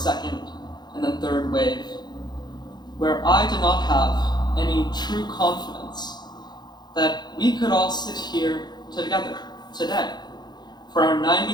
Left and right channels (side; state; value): right; late; 0.21 ms